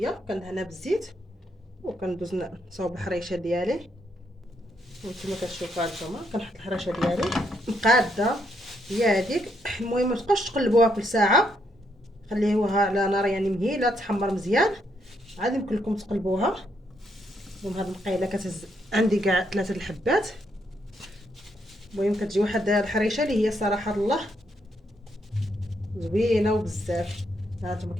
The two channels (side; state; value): both; normal; correlation 0.76